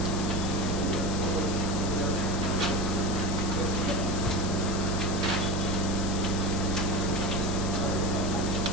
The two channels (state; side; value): noise; left; hiss, 8 dB below the sound